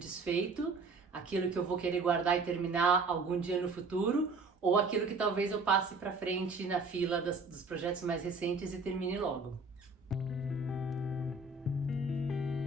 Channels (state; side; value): quieter; left; 3.8 dB